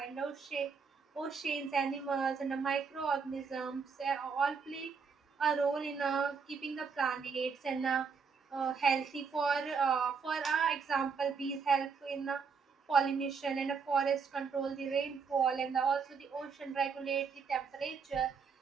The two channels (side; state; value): left; quieter; 5.6 dB